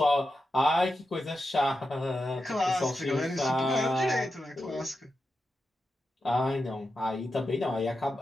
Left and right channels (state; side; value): normal; both; correlation 0.89